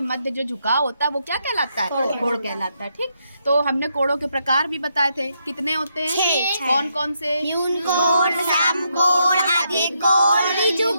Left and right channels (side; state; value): both; inverted; correlation -0.79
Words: मध्य जो झुकाव होता है वो क्या कहलाता है? कोड कहलाता है। ठीक, तो हमने कोड़ों के प्रकार भी बताए थे। कितने होते हैं? 6। कौन कौन से? न्यून कोण, सम कोण, अधिक कोण, ऋजु